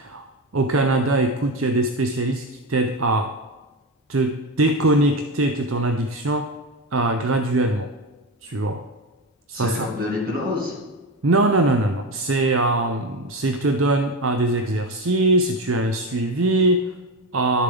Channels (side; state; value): both; normal; correlation 0.18